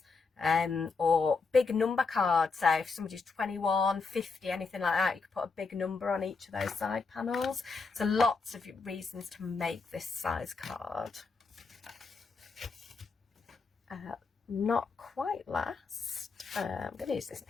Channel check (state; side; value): quieter; right; 4.5 dB